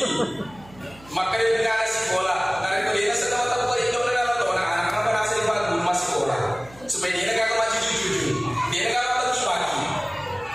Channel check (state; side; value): noise; right; hum, 23 dB below the sound